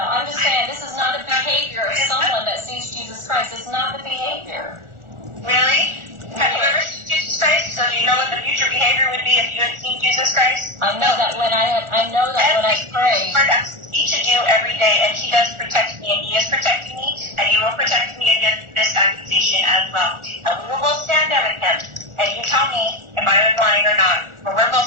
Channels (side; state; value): left; late; 1.4 ms